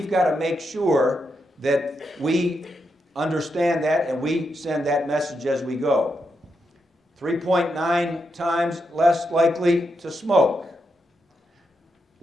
got to make sure that we understand that and we send that message as we go. 3.9 times less likely to smoke.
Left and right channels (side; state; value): both; normal; correlation 0.83